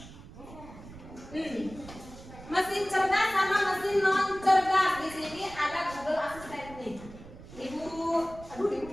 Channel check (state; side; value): noise; right; rumble, 16 dB below the sound